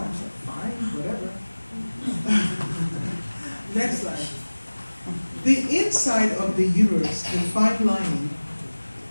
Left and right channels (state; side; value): inverted; both; correlation -1.00